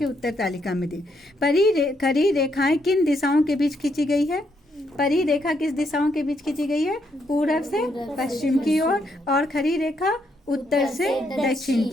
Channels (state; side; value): normal; both; correlation 0.75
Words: उत्तर तालिका में दें। खरी रेखाएं किन दिशाओं के बीच खींची गई है? परी रेखा किस दिशाओं के बीच खींची गई है? पूरब से पश्चिम की ओर, और खरी रेखा उत्तर से दक्षिण